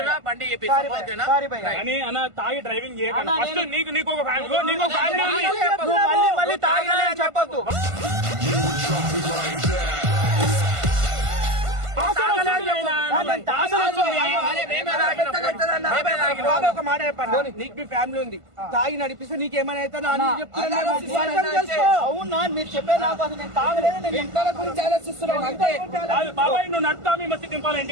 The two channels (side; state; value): left; late; 1.5 ms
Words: బండి చెప్పేసి ఓకేనా? సారీ భయ్యా. కానీ అన్న తాగి డ్రైవింగ్ చేయకండి. అన్నా, ఫస్ట్ నేను- నీకు ఒక ఫ్యామిలీ నీకు ఒక ఫ్యామిలీ ఉంది. నువ్వు మళ్ళీ మళ్ళీ తాగలే అని చెప్పొద్దు. తాగలేదు అయినా. తాగలేదు వస్తుంది. బాబా ఒక మాట చెప్పండి. నీకు మీ ఫ్యామిలీ ఉంది, తాగి నడిపిస్తే నీకేమైనా అయితే అవునా మీరు చెప్పే నాకు అసలు నేను తాగలేదు, నేను ఇంట్లో గురించి ఆలోచిస్తున్నాం అంతే. కాదు బాబాయ్, నువ్వు నడుతా మీ మస్తు దింపాలి